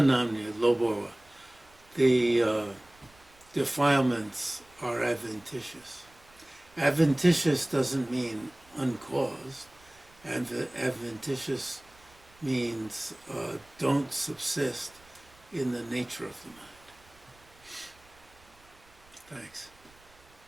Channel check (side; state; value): right; noise; rumble, 28 dB below the sound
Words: Loborwa. The defilements are adventitious. Adventitious doesn't mean uncaused. Adventitious means don't subsist in the nature of the mind. Thanks.